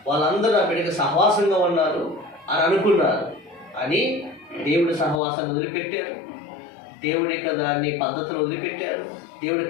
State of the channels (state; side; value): drops out; right; at 5.2 s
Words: వాళ్ళందరూ నా బిడ్డకి సహవాసంగా ఉన్నారు అని అనుకున్నారు. అని దేవుడి సహవాసాన్ని వదిలిపెట్టారు, దేవుడి యొక్క దాన్ని పద్ధతులు వదిలిపెట్టారు, దేవుడి